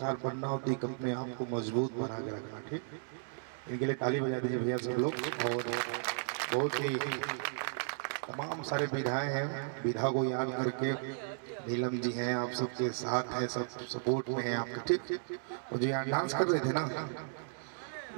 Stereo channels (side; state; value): left; silent; digital silence